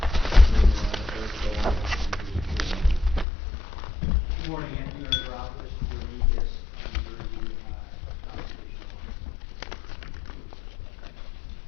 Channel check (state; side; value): drops out; right; at 3.2 s